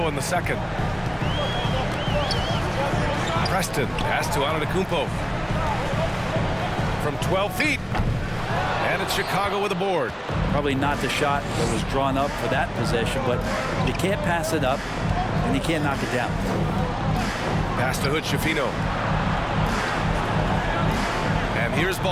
in the second. Preston, pass to Antetokounmpo. from 12 feet. And it's Chicago with a board. Probably not the shot that was drawn up for that possession, but you can't pass it up, and you can't knock it down. Pass to Hood-Schifino. And here's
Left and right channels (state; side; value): identical; both; correlation 1.00